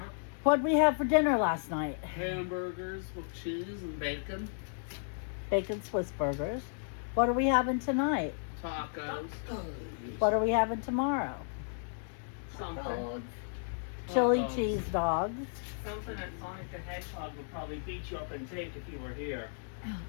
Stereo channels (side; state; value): right; silent; digital silence